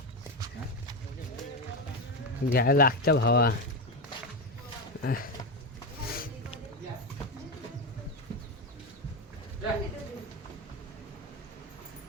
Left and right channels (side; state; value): both; normal; correlation 0.14